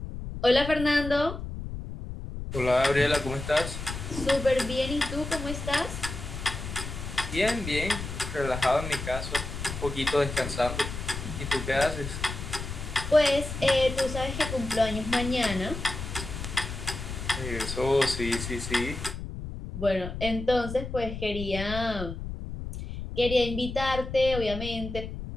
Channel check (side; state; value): left; noise; rumble, 7 dB below the sound